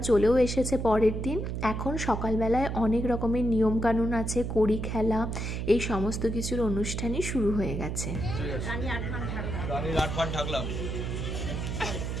চলেও এসেছে পরের দিন। এখন সকালবেলায় অনেক রকমের নিয়মকানুন আছে, কড়ি খেলা, এই সমস্ত কিছুর অনুষ্ঠানই শুরু হয়ে গেছে।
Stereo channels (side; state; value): right; noise; hum, 3 dB below the sound